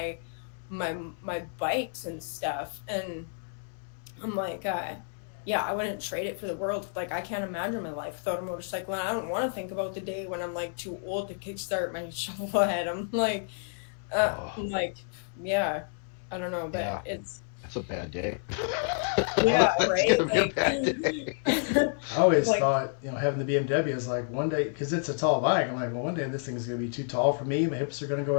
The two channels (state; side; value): silent; right; 58 dB below the other